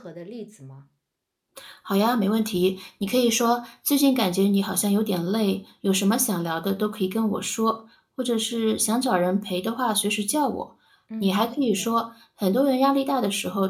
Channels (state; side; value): identical; both; correlation 1.00